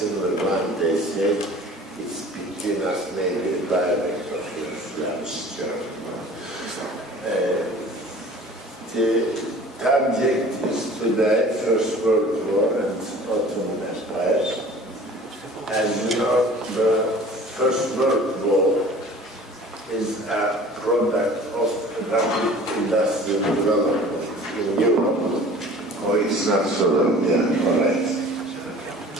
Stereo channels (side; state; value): both; normal; correlation 0.46